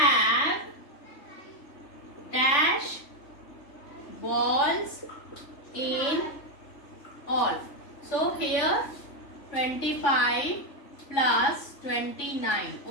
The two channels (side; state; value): right; late; 3.4 ms